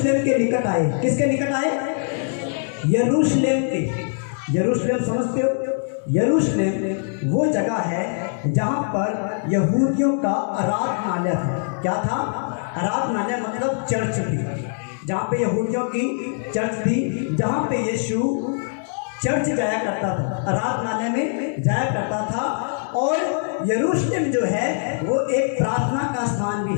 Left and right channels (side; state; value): right; silent; digital silence